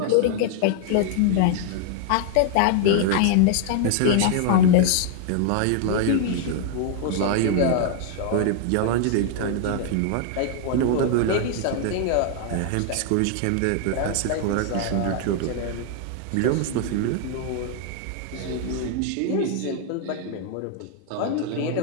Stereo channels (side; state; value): both; different; correlation 0.00